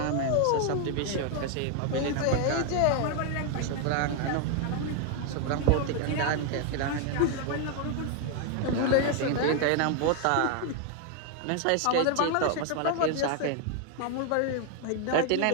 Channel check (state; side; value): different; both; correlation 0.00